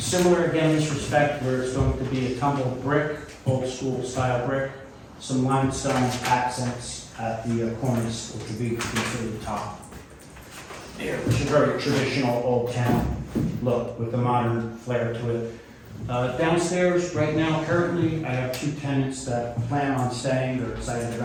again in this respect, where it's going to be a tumbled brick, old school style brick, some limestone accents at the corners, which would be considered the top. Here, which is a very traditional old town look with a modern flair to it. Downstairs, right now, currently, I have 2 tenants that plan on staying. They're excited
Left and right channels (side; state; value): both; identical; correlation 1.00